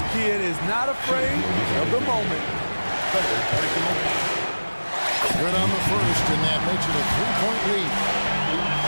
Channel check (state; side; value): inverted; both; correlation -1.00